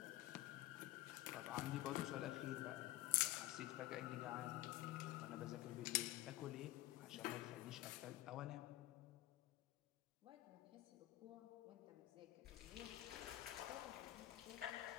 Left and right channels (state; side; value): quieter; right; 16.2 dB